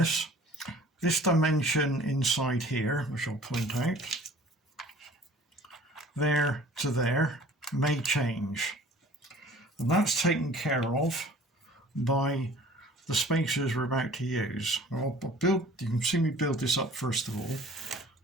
this dimension inside here, which I'll point out, there to there, may change. And that's taken care of by the spacers we're about to use. You can see me build this up first of all.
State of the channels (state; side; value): normal; both; correlation 0.49